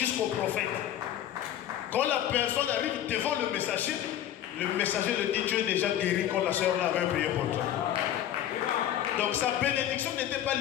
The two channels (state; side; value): quieter; right; 11.5 dB